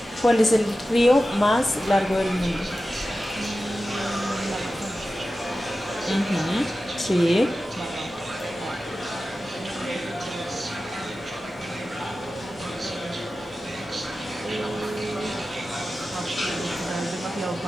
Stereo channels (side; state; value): right; noise; hum, 28 dB below the sound